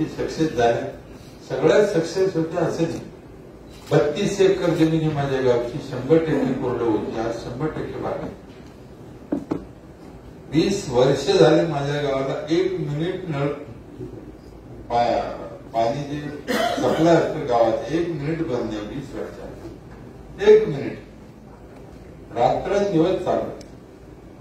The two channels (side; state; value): both; identical; correlation 1.00